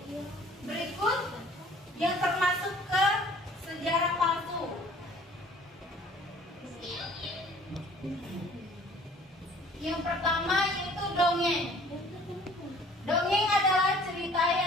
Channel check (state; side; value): normal; both; correlation 0.53